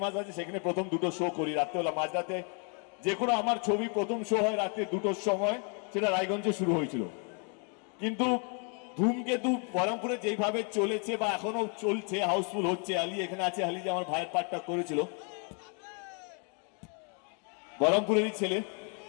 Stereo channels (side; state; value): right; quieter; 38.5 dB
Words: আছে, সেখানে প্রথম 2টো শো করি রাত্রেবেলা, মাঝরাতে। যে কোনো আমার ছবি প্রথম শো হয় রাত্রে 2টোর সময়, সেটা রায়গঞ্জে শুরু হয়েছিল। কিন্তু ধূমকেতু বহরমপুরে যেইভাবে চলেছে বা এখনো চলছে, হাউসফুল হচ্ছে। আলী এখানে আছে, আলী যে আমার ভাইয়ের পার্টটা করেছিল, বহরমপুরেরই ছেলে।